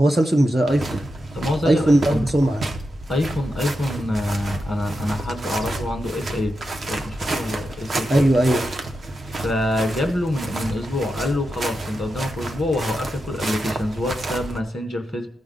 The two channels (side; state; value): both; normal; correlation 0.88